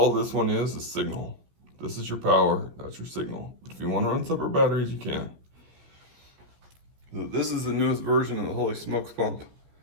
this one is signal. This is your power, that's your signal. If you want to run separate batteries, you can. So this is the newest version of the Holy Smokes pump.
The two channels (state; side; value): late; left; 14 ms